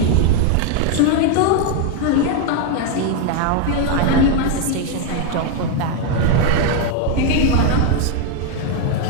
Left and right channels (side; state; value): both; different; correlation 0.01